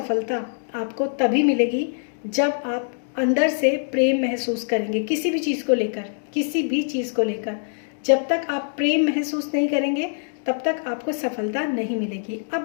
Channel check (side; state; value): right; silent; digital silence